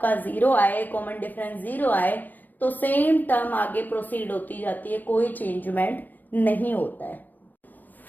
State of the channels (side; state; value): right; late; 0.088 ms